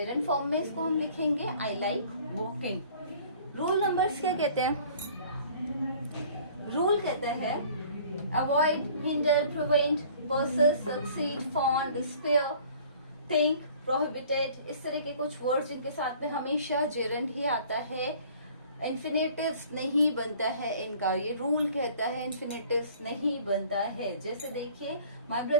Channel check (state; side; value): inverted; both; correlation -0.51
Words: फॉर्म में इसको हम लिखेंगे I like walking. Rule numbers क्या कहते हैं, रूल कहते हैं avoid, hinder, prevent, persist, succeed, fond, despair, think, prohibited, इस तरह के कुछ वर्ड्स जिनके साथ में हमेशा जेरेंड ही आता है। इन्फिनेटिव्स नहीं बनता है इनका, ये रूल कहता है इन्फिनेटिव्स नहीं बनता है। जैसे देखिए my